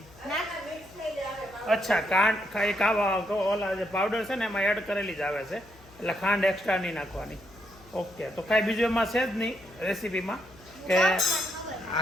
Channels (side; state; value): left; noise; hum, 25 dB below the sound